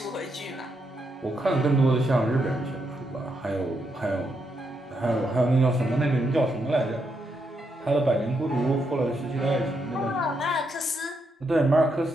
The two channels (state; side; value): normal; both; correlation 0.80